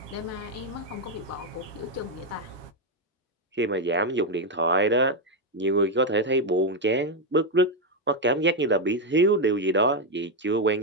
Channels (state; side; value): normal; both; correlation 0.05